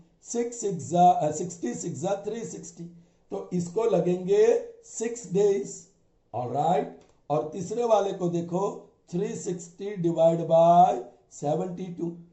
66 जा 360, तो इसको लगेंगे 6 डेज. ऑलराइट, और तीसरे वाले को देखो, 360 डिवाइड बाय 72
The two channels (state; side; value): identical; both; correlation 1.00